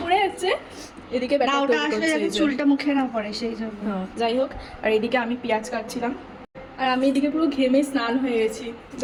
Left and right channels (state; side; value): identical; both; correlation 1.00